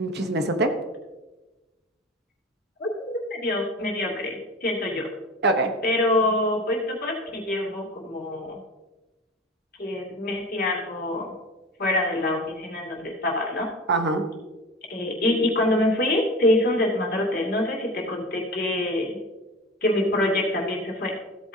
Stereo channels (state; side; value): normal; both; correlation 0.34